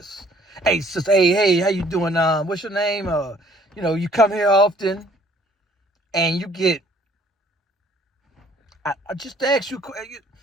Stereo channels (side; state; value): both; normal; correlation 0.59